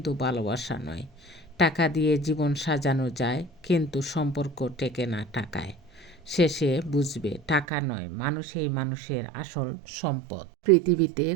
ভালোবাসা নয়। টাকা দিয়ে জীবন সাজানো যায়, কিন্তু সম্পর্ক টেকে না টাকায়। শেষে বুঝবে টাকা নয়, মানুষই মানুষের আসল সম্পদ। পৃথিবীতে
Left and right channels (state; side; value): drops out; left; at 7.7 s